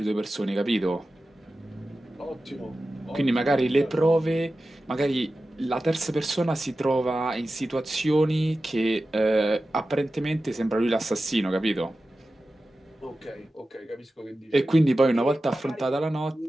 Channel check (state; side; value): normal; both; correlation 0.94